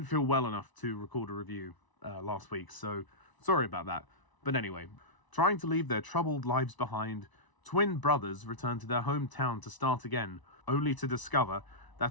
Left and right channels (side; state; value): right; late; 1.0 ms